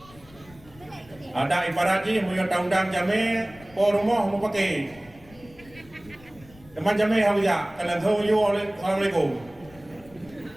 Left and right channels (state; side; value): noise; left; rumble, 23 dB below the sound